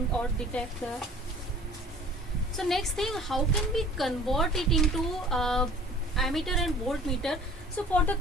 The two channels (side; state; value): both; normal; correlation 0.48